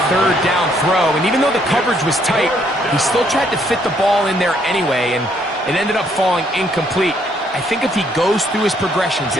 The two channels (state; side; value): normal; both; correlation 0.69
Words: third down throw, and even though the coverage was tight, he still tried to fit the ball in there anyway, and it ended up falling incomplete. I think if he goes through his progressions